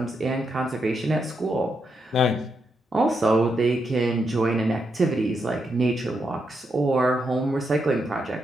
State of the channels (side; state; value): both; normal; correlation 0.82